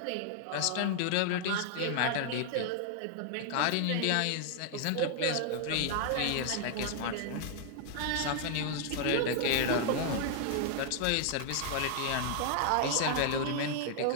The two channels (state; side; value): different; both; correlation 0.00